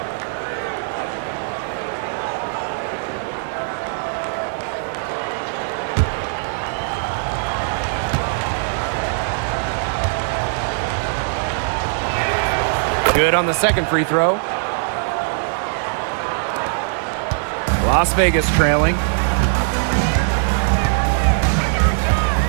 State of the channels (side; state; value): left; silent; digital silence